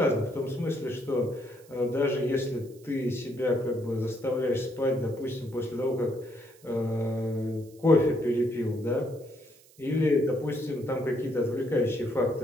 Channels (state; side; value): noise; right; hiss, 27 dB below the sound